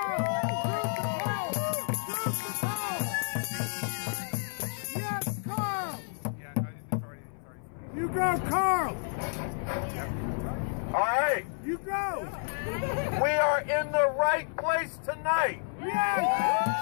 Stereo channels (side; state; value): right; silent; 57 dB below the other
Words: Yes, Carl! Yeah, no, it's already. You go, Carl! All right. You go! We are in the right place tonight.